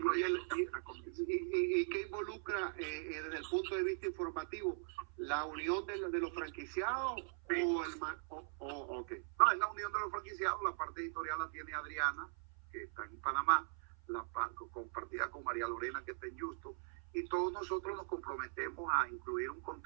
¿Y qué involucra desde el punto de vista informativo? ¿La unión de los franquiciados? Sí. Okay. No, es la unión de los franquiciados. La parte editorial la tiene Adriana, que está en Panamá, compartida con María Lorena, que está en Houston, y todos nosotros nos comprometemos a incluir un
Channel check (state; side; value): silent; left; 51 dB below the other